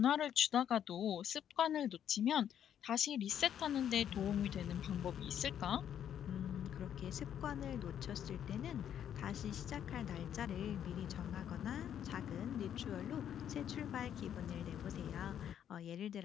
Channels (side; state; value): right; quieter; 9.6 dB